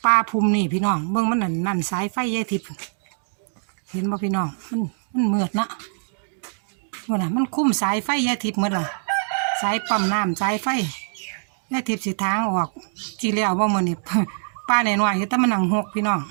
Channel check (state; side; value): silent; left; digital silence